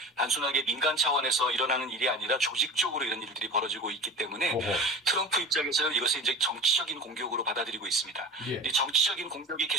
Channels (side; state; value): both; normal; correlation 0.33